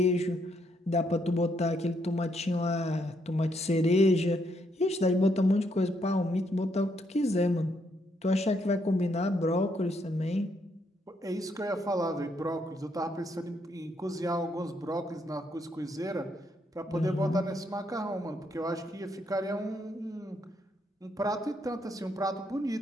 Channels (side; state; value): both; normal; correlation 0.74